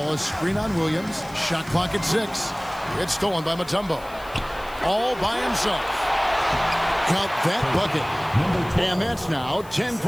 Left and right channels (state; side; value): noise; left; hiss, 23 dB below the sound